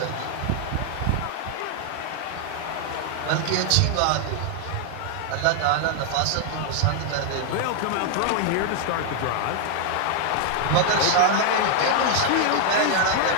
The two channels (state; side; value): different; both; correlation 0.00